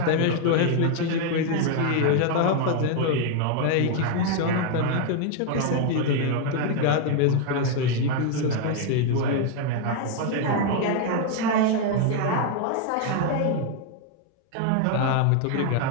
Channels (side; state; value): both; different; correlation 0.01